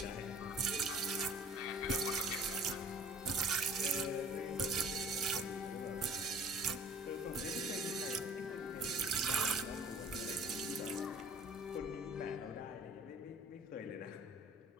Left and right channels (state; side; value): normal; both; correlation 0.50